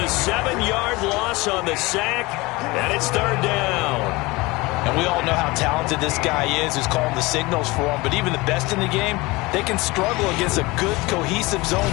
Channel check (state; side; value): quieter; right; 22.7 dB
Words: 7-yard loss on the sack, and it's 3rd down. And we all know how talented this guy is who's calling the signals for him. But even the best in the game, they can struggle against a good, cohesive zone